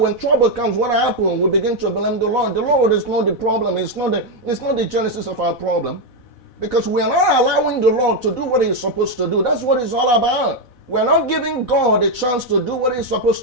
trouble comes, what happens? We begin to blame the Lord. The Lord is not the problem. It's not the genesis of our problem, because we are not allowing the Lord to do what He's supposed to do. That's what it's all about. We're not giving God a chance to do what He's supposed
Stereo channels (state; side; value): late; right; 4.0 ms